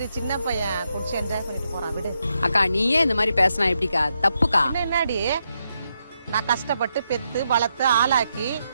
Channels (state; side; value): inverted; both; correlation -0.82